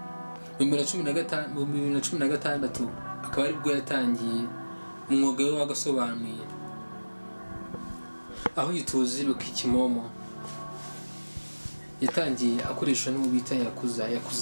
Mu 2016 akaba ari bwo yatangiye umwuga we wagasobanuye, aho yituzi Rocky Kimomo yatangiye akoresha n'uwo bita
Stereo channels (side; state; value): both; inverted; correlation -1.00